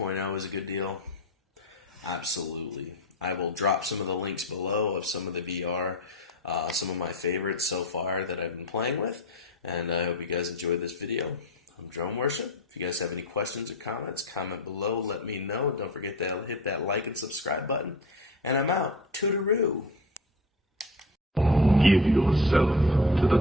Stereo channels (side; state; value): both; normal; correlation 0.30